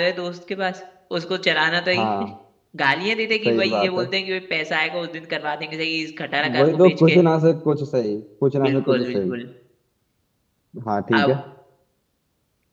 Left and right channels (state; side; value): identical; both; correlation 1.00